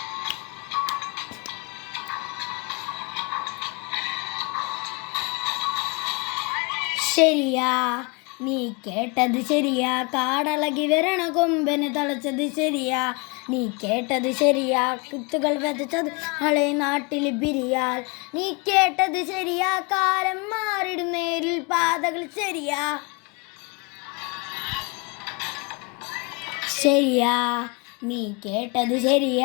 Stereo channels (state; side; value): quieter; right; 30.7 dB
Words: ശരിയാ നീ കേട്ടത് ശരിയാ, കാടളകി വരണ കൊമ്പന് തളച്ചത് ശരിയാ. നീ കേട്ടത് ശരിയാ, കുത്തുകൾ വിതച്ചത് നാളെ നാട്ടിൽ ബിരിയാൽ. നീ കേട്ടത് ശരിയാ, കാലം മാറിടും നേരിൽ പാതകൾ ശരിയാ. ശരിയാ നീ കേട്ടത്